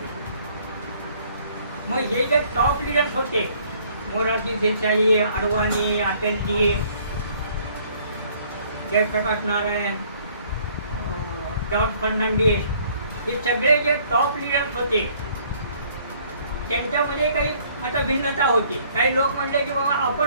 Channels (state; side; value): inverted; both; correlation -0.60